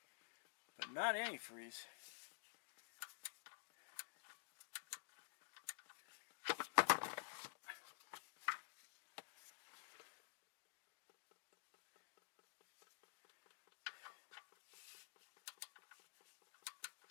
but not antifreeze.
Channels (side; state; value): right; silent; digital silence